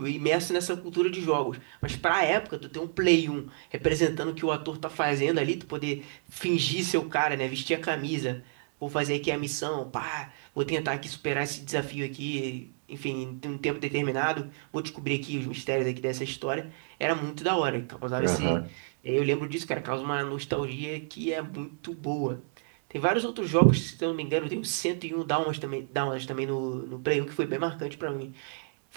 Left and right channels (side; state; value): left; silent; 58 dB below the other